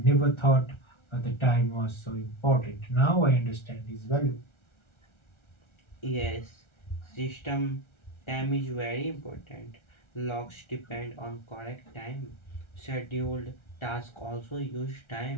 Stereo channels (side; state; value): right; late; 1.4 ms